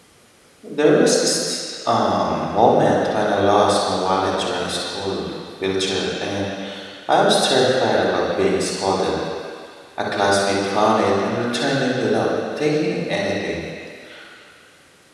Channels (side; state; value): both; identical; correlation 1.00